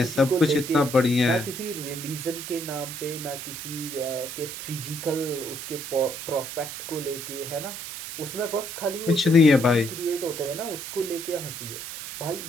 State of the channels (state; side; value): noise; right; hiss, 8 dB below the sound